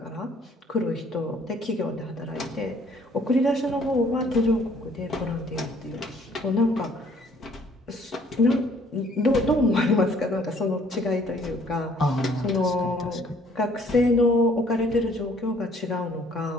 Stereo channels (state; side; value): normal; both; correlation 0.60